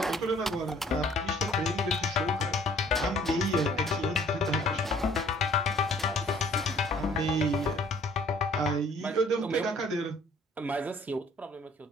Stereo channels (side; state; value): both; normal; correlation 0.57